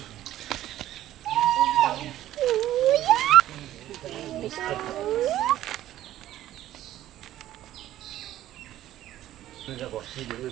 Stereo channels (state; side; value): quieter; left; 13.4 dB